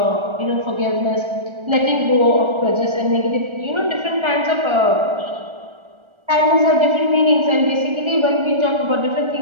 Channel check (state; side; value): late; left; 1.3 ms